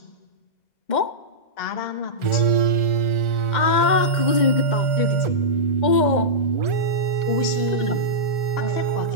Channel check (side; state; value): right; late; 2.1 ms